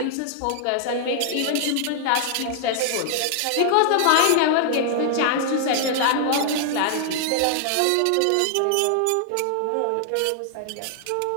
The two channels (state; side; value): different; both; correlation 0.00